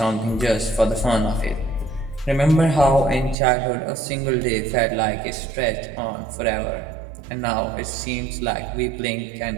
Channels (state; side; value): drops out; left; at 3.4 s